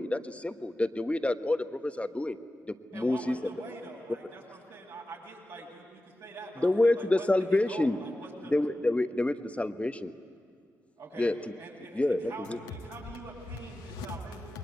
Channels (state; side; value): normal; both; correlation 0.94